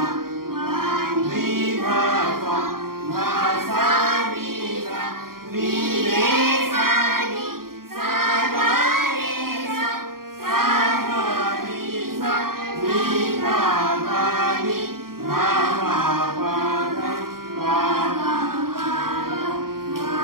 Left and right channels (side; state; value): left; late; 0.92 ms